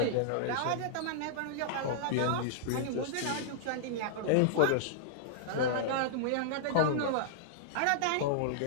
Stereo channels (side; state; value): both; different; correlation -0.02